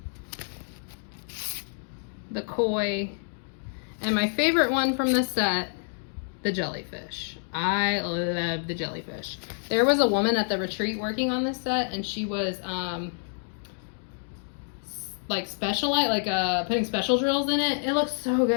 the koi, and my favorite one from the set, the jellyfish. I love the jellyfish. There was a woman at the retreat working on this set, and she was like specialite, like putting special drills in it. It looks so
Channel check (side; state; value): right; silent; digital silence